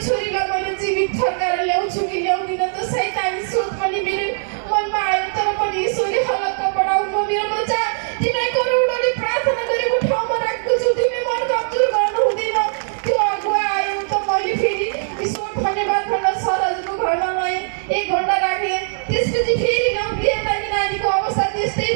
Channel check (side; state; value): left; silent; digital silence